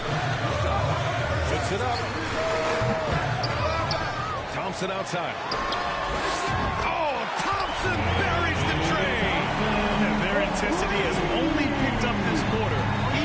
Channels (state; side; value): identical; both; correlation 1.00